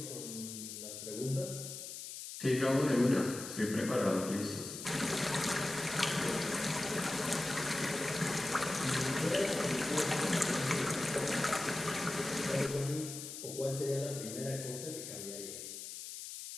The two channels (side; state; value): left; noise; hiss, 9 dB below the sound